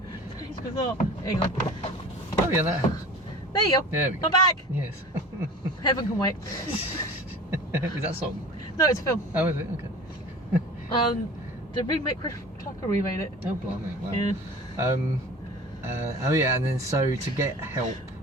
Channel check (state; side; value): normal; both; correlation 0.40